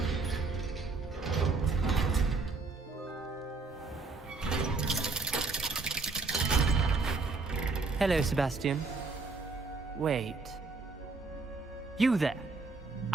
Hello, Sebastian. Wait. You there?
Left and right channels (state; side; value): quieter; left; 4.0 dB